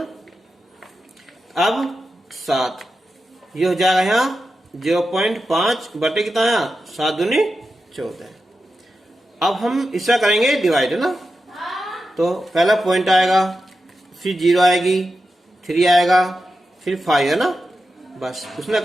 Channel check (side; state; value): both; normal; correlation 0.90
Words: अब 7 ये हो जाएगा यहाँ 0.5 बटे कितना यहाँ 7 दूनी 14। अब हम इसका करेंगे डिवाइड है ना। तो पहला पॉइंट आएगा, फिर 0 आएगी, 3 आएगा, फिर 5 है ना। बस उसने